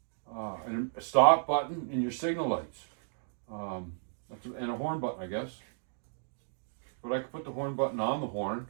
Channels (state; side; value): silent; left; digital silence